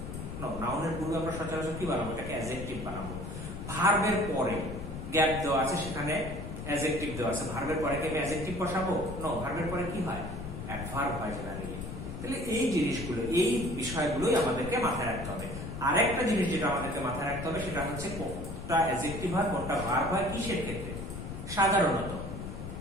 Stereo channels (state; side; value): noise; left; rumble, 7 dB below the sound